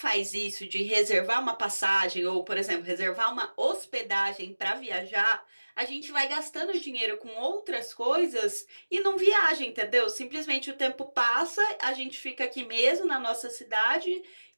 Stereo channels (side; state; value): both; inverted; correlation -1.00